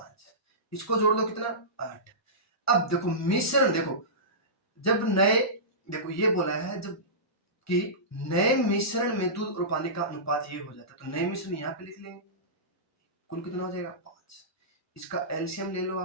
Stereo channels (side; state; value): both; normal; correlation -0.20